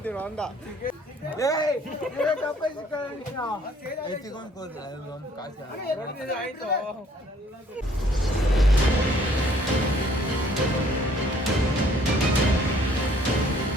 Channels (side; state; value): both; normal; correlation 0.61